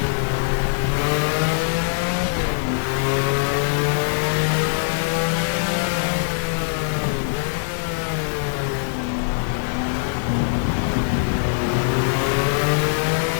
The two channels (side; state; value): right; silent; digital silence